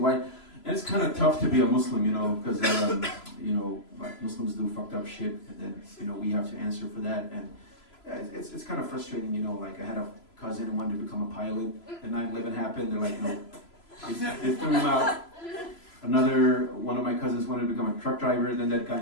white. And it's kind of tough to be a Muslim, you know, because you know, like Muslims do fucked up shit, and then you know we have to answer for that, and it's kind of frustrating, you know. Like I had a cousin who wanted to become a pilot, and 9/11 happened. They're like, no, they threw him out. Another one of my cousins wanted to become a truck driver, and then that guy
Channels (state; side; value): late; right; 3.0 ms